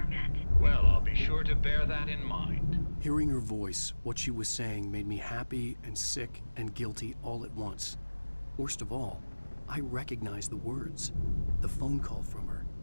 met. Well, I'll be sure to bear that in mind. Hearing her voice, what she was saying made me happy and sick and guilty all at once. Worst of all, I recognized the words. The phone call from her.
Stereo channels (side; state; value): both; inverted; correlation -1.00